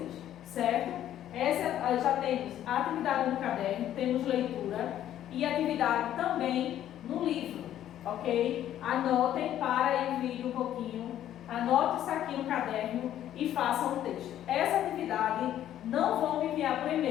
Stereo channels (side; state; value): right; quieter; 11.6 dB